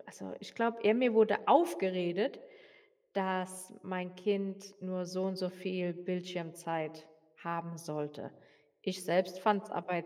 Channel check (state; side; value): identical; both; correlation 1.00